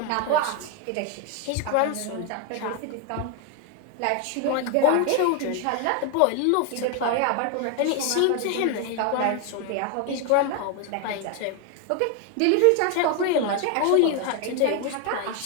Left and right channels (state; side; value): different; both; correlation 0.01